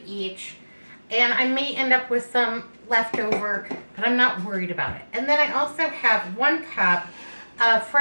each, and I may end up with some leftover, but I'm not worried about it. And then I also have 1 cup of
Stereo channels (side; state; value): both; inverted; correlation -1.00